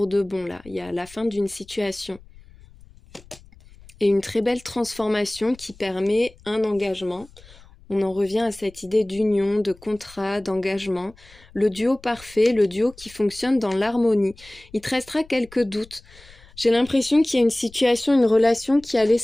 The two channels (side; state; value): left; noise; rumble, 24 dB below the sound